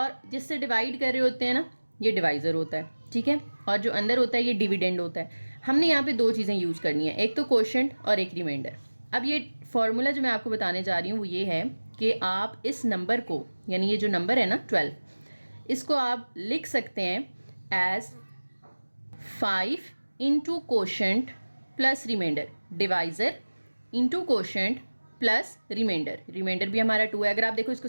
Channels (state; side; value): inverted; both; correlation -1.00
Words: जिससे डिवाइड कर रहे होते हैं ना ये डिवाइज़र होता है, ठीक है, और जो अंदर होता है ये डिविडेंड होता है। हमने यहाँ पे 2 चीज़ें यूज़ करनी है, एक तो कोशेंट और एक रिमाइंडर। अब ये फॉर्मूला जो मैं आपको बताने जा रही हूँ वो ये है कि आप इस नंबर को, यानी ये जो नंबर है ना 12, इसको आप लिख सकते हैं as 5 into quotient plus remainder, divisor into quotient plus remainder, remainder भी हमारा 2 है। अगर आप देखो